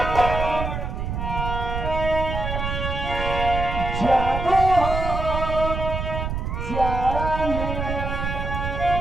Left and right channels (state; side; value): noise; right; rumble, 3 dB below the sound